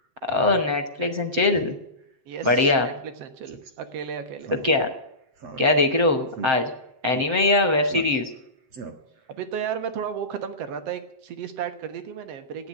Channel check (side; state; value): left; late; 7.7 ms